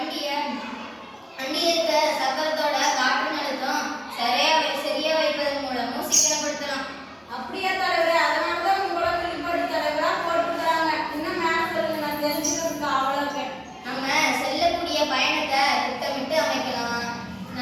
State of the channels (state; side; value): identical; both; correlation 1.00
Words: இருக்க சக்கரத்தோட காற்று நிறுத்தம் சரியா வைப்பதன் மூலமும் சிக்கனப்படுத்தலாம். அப்படியே தலைவரே, அதனாலதான் உங்களோட வெளிப்பாடு தலைவரா போட்டுக்கிறாங்க. இன்னும் மேல சொல்லுங்க, நான் தெரிஞ்சுக்கிறதுக்கு அவ்வளவு. நம்ம செல்லக்கூடிய பயணத்தை திட்டமிட்டு அமைக்கலாம்.